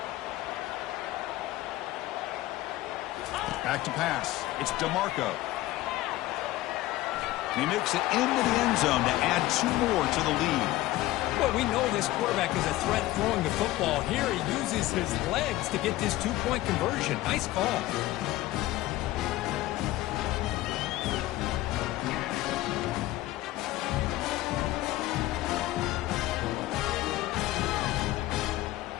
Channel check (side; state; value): right; quieter; 16.7 dB